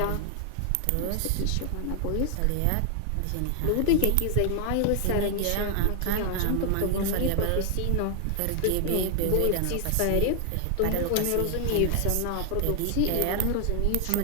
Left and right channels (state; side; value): different; both; correlation 0.00